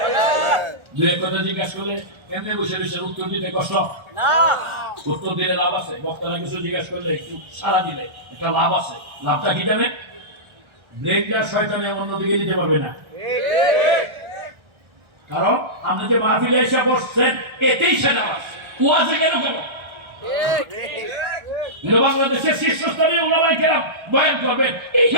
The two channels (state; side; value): late; left; 1.4 ms